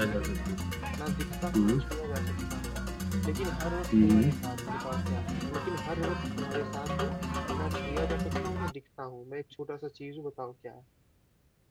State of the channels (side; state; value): both; identical; correlation 1.00